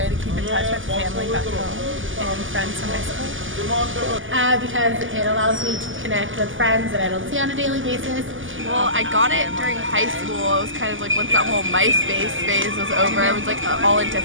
to keep in touch with family back home and friends from high school. Because it allows me to connect with friends that I don't see on a daily basis. Well, I got it during high school. It was kind of like once that whole MySpace phase was over, I was like all into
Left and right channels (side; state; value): left; late; 0.58 ms